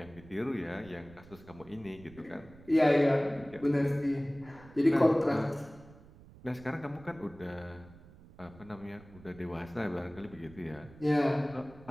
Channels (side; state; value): right; noise; rumble, 21 dB below the sound